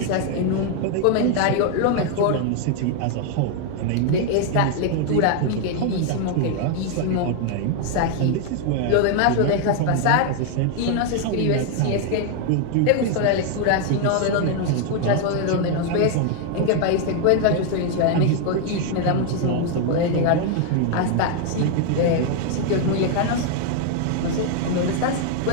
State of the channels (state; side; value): different; both; correlation 0.00